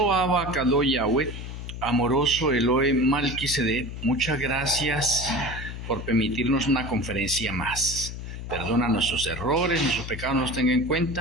Abba Kadosh Yahweh, amoroso Elohe Malquisedec, muchas gracias por permitirnos una conferencia más. Perdona nuestros errores, nuestros pecados nos tenga en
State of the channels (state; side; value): noise; left; hum, 8 dB below the sound